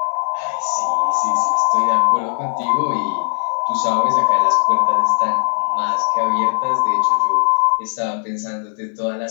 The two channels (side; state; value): right; silent; digital silence